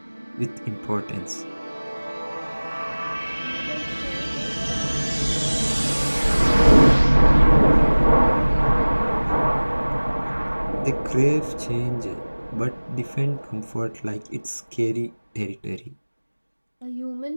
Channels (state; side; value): inverted; both; correlation -1.00